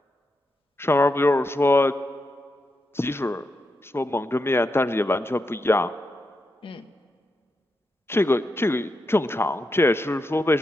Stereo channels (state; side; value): normal; both; correlation 0.85